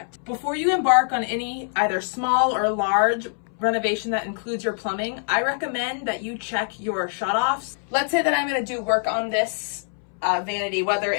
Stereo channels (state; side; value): silent; right; 62 dB below the other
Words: Before you embark on any either small or large renovation that includes your plumbing, I recommend that you check your shutoffs. Let's say that I'm going to do work on this vanity, whether